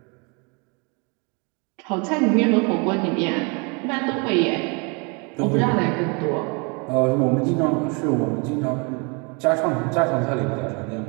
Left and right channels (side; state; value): left; quieter; 32.1 dB